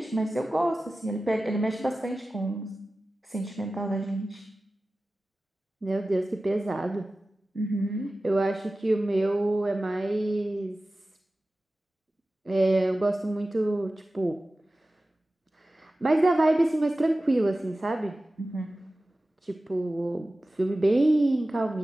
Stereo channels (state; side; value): normal; both; correlation 0.96